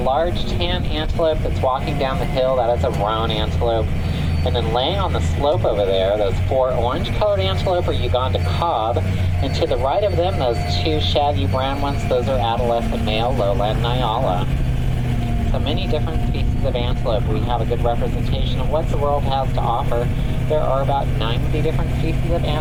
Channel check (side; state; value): both; identical; correlation 1.00